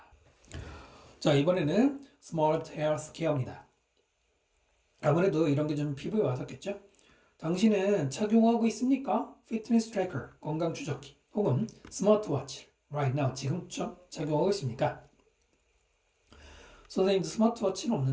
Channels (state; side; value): identical; both; correlation 1.00